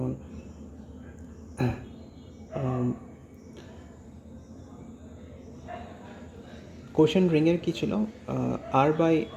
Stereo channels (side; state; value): both; identical; correlation 1.00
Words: কোশেন্ট রিংয়ের কী ছিল, আর বাই